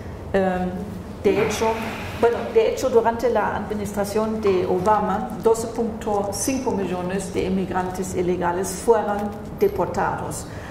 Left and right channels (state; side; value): identical; both; correlation 1.00